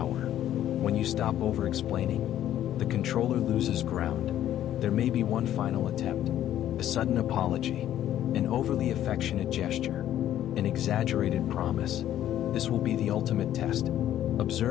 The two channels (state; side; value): quieter; right; 11.9 dB